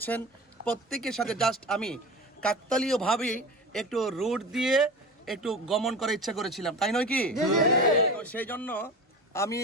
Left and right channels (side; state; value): both; normal; correlation 0.31